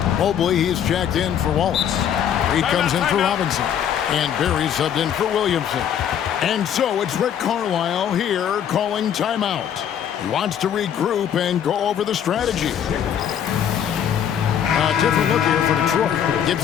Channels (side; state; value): right; quieter; 9.1 dB